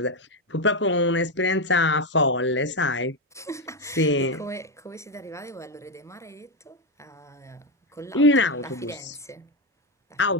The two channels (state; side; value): normal; both; correlation 0.08